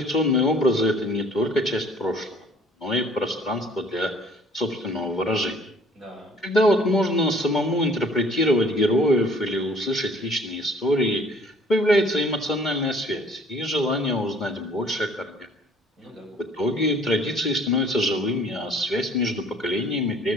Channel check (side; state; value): both; normal; correlation 0.55